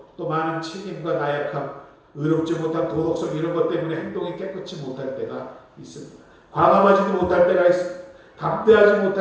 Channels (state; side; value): identical; both; correlation 1.00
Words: 또 많은 책임과 나약함, 의롭지 못한 도덕성 이런 것 때문에 행동이 깨끗이 못할 때가 있습니다. 과감하지도 못할 때가 있습니다. 담대하지